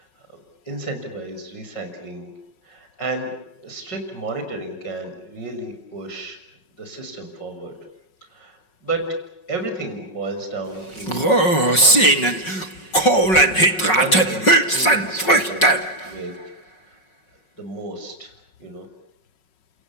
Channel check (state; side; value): late; right; 5.4 ms